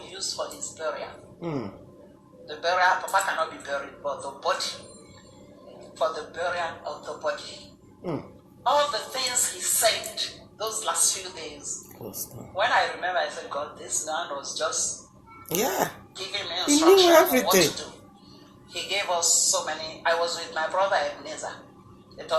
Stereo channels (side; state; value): both; identical; correlation 1.00